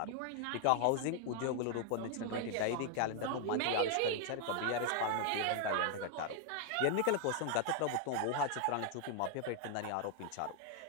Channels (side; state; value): both; different; correlation 0.00